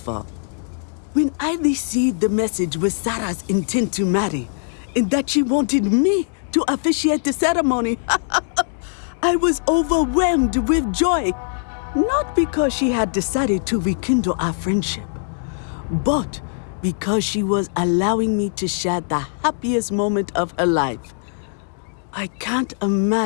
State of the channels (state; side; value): silent; right; digital silence